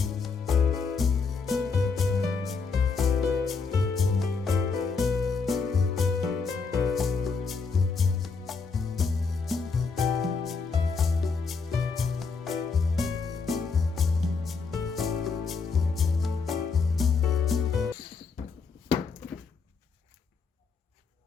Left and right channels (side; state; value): right; quieter; 4.9 dB